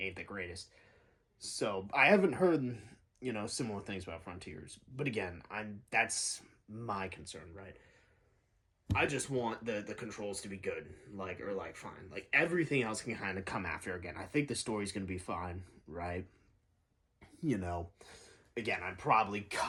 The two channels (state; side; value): identical; both; correlation 1.00